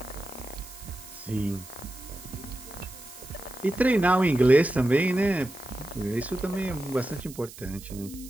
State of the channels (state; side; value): noise; right; hiss, 17 dB below the sound